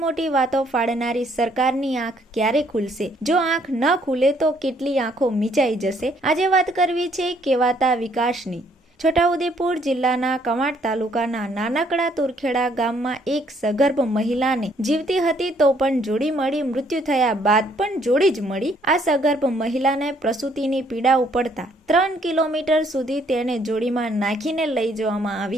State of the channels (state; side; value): normal; both; correlation 0.66